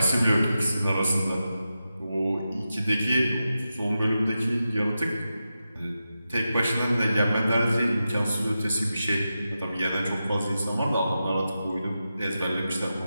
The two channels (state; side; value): inverted; both; correlation -0.91